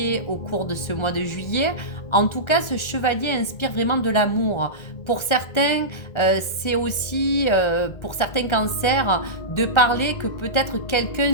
au cours de ce mois de juillet. En tout cas, ce chevalier inspire vraiment de l'amour. Pour certains, c'est aussi, pour certains cancers, de parler que peut-être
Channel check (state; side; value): late; right; 1.4 ms